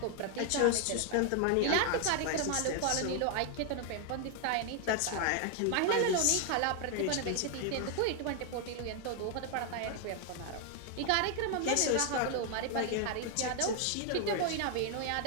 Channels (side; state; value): both; different; correlation 0.00